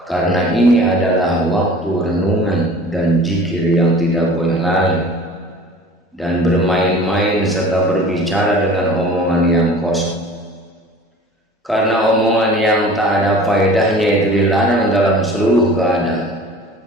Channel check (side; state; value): both; normal; correlation 0.44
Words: karena ini adalah waktu renungan dan zikir yang tidak boleh lalai dan bermain-main serta berbicara dengan omongan yang kosong. Karena omongan yang tak ada faedahnya itu dilarang dalam seluruh keadaan,